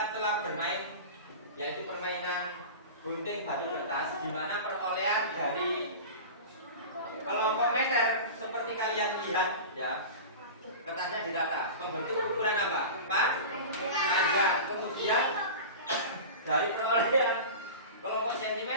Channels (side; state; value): both; inverted; correlation -0.31